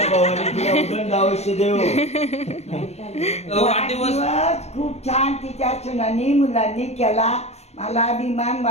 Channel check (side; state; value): right; late; 0.31 ms